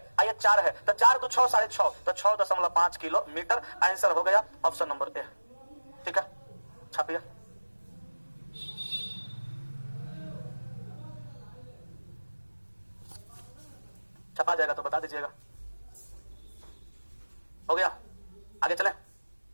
ये 4 है, तो 4 तो 6 6.5, तो 6.5 किलोमीटर आंसर हो गया ऑप्शन नंबर ए, ठीक है। छापिए, छपा जाएगा तो बता दीजिएगा। हो गया, आगे चले,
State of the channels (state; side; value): inverted; both; correlation -1.00